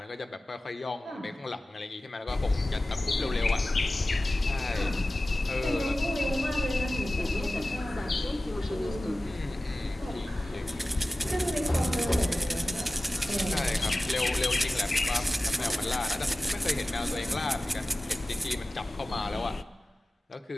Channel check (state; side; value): normal; both; correlation 0.96